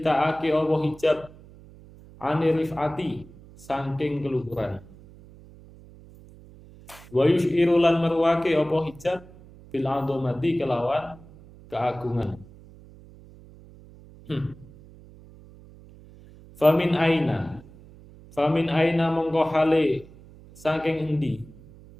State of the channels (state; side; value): noise; right; hum, 22 dB below the sound